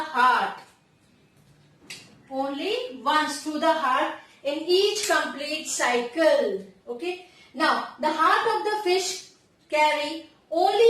Only once through the heart in each complete cycle. Okay. Now, the heart of the fish carry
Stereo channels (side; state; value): both; identical; correlation 1.00